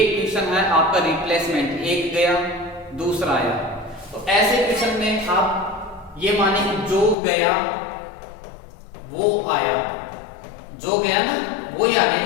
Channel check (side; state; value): right; drops out; at 7.2 s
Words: क्वेश्चन है आपका रिप्लेसमेंट, एक गया दूसरा आया। तो ऐसे क्वेश्चन में आप ये माने कि जो गया वो आया, जो गया ना वही आ गया,